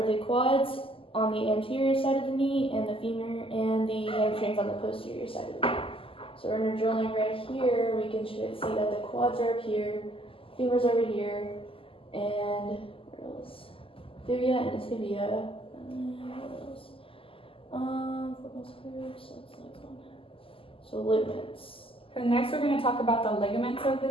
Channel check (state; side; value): late; right; 0.26 ms